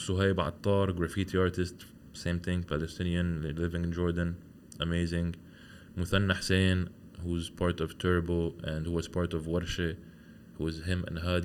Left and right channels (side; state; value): both; identical; correlation 1.00